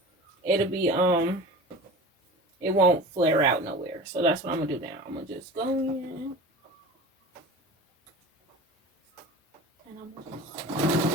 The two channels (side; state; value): both; normal; correlation 0.36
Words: it'll be it won't flare out nowhere. So that's what I'm gonna do now. I'm gonna just go in. And I'm